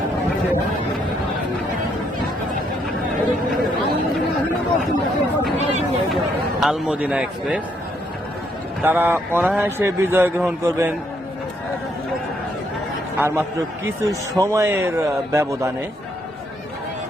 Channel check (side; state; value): both; normal; correlation 0.73